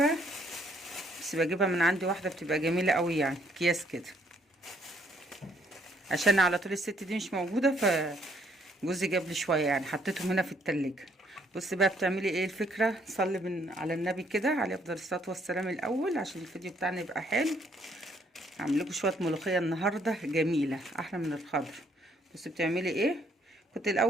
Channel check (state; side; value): normal; both; correlation 0.67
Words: بس بجيبها من عندي واحدة بتبقى جميلة قوي، يعني اكياس كده، عشان على طول الست دي مش موجودة، فجوزي جاب لي شوية، يعني حطيتهم هنا في التلاجة. بصي بقى بتعملي ايه الفكرة. صلي على النبي كده عليه افضل الصلاة والسلام الاول، عشان الفيديو بتاعنا يبقى حلو. هعمل لكم شويه ملوخيه النهارده جميله احلى من الخضر. بصي بتعملي ايه. كنت